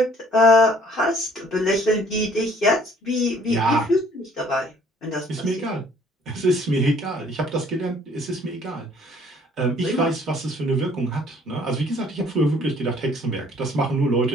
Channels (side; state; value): both; normal; correlation 0.58